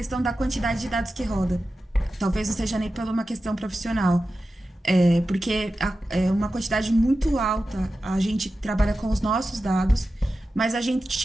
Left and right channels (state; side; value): normal; both; correlation 0.93